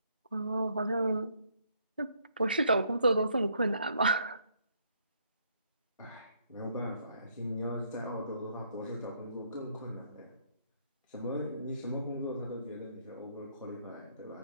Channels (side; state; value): both; inverted; correlation -0.69